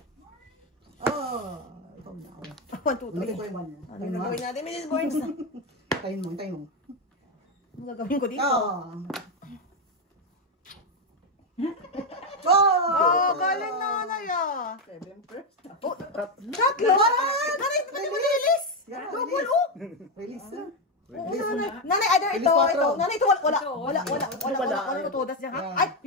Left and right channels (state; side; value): normal; both; correlation 0.07